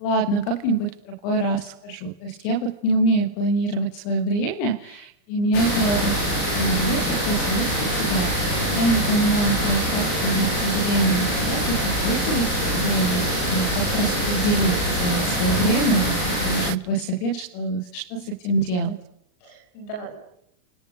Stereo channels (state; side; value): late; right; 39 ms